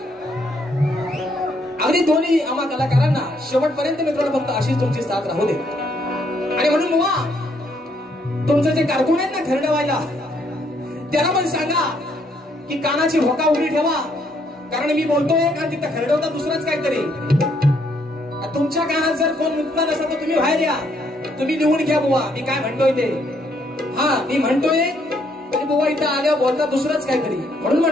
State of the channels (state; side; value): normal; both; correlation 0.71